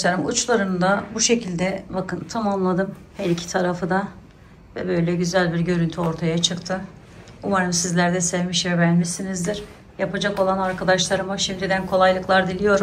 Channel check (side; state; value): both; identical; correlation 1.00